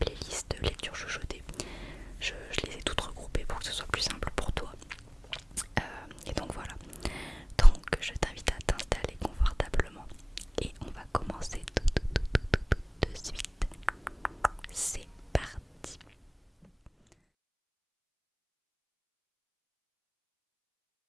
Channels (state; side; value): identical; both; correlation 1.00